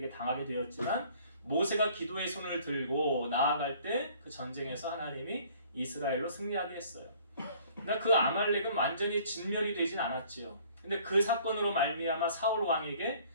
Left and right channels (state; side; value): inverted; both; correlation -0.55